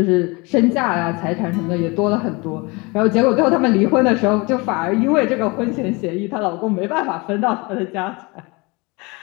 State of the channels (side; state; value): right; quieter; 26.7 dB